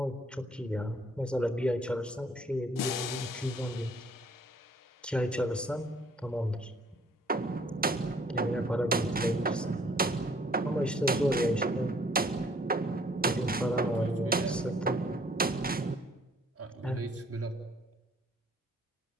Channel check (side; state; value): both; normal; correlation 0.60